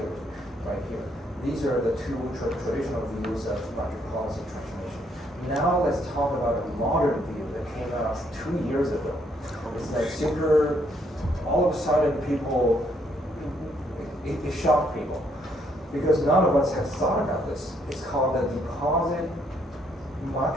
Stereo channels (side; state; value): both; normal; correlation 0.71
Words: right here. These are the two traditional views of monetary policy transformation. Now let's talk about a modern view that came out 2 years ago. It's like super, all of a sudden people, it shocked people because none of us have thought about this. It's called the deposit